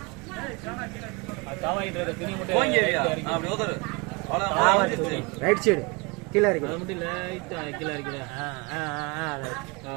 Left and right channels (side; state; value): left; quieter; 28.0 dB